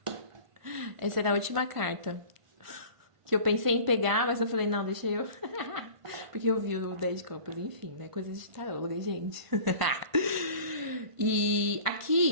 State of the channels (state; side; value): late; left; 1.5 ms